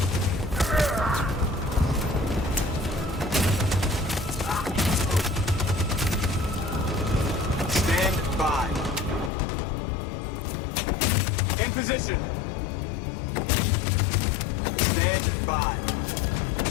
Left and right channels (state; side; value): drops out; right; at 9.3 s